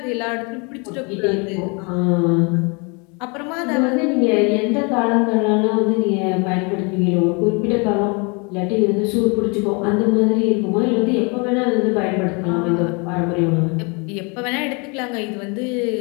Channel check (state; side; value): quieter; right; 31.9 dB